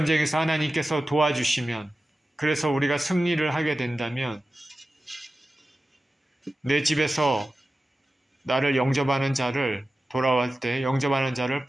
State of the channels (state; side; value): normal; both; correlation 0.94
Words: 하나님께서 도와주시면, 그래서 우리가 승리를 하게 된다면 내 집에서 나를 영접하는 자를, 돌아올 때 영접하는 자를